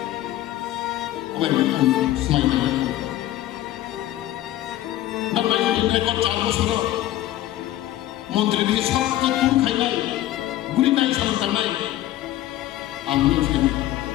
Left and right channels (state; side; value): quieter; right; 14.3 dB